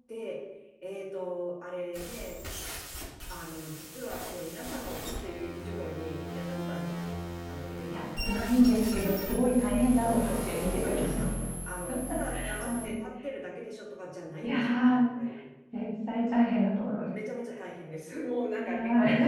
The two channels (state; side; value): identical; both; correlation 1.00